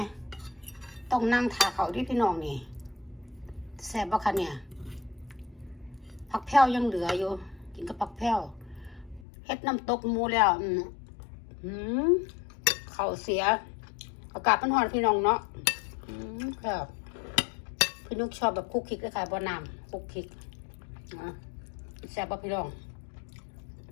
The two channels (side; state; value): right; drops out; at 9.2 s